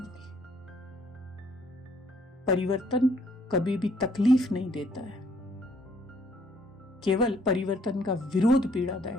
परिवर्तन कभी भी तकलीफ नहीं देता है, केवल परिवर्तन का विरोध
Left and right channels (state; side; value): normal; both; correlation 0.65